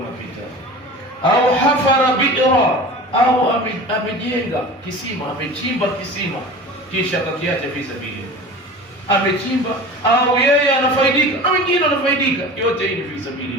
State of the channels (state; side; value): normal; both; correlation 0.36